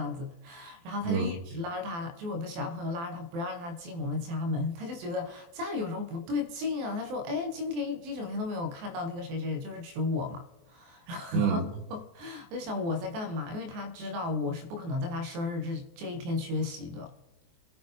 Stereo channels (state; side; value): late; left; 23 ms